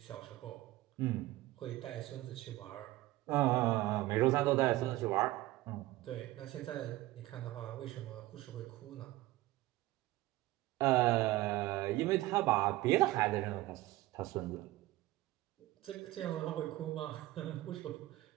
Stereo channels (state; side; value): quieter; left; 17.6 dB